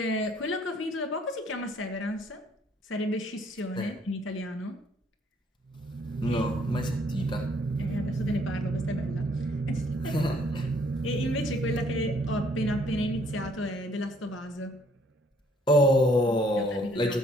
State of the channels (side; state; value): both; normal; correlation 0.63